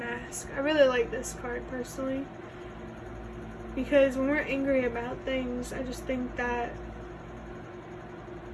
I really like this card personally because when we're angry about things, I just think that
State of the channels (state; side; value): identical; both; correlation 1.00